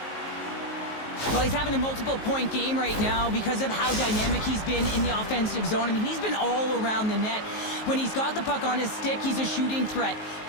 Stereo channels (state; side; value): late; right; 19 ms